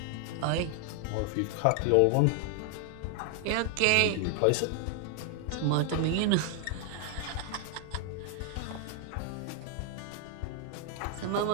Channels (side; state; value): both; different; correlation 0.00